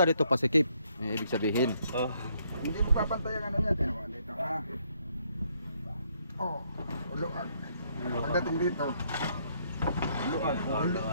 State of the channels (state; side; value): inverted; both; correlation -0.70